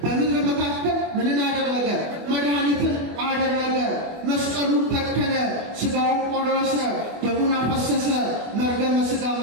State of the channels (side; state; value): left; late; 24 ms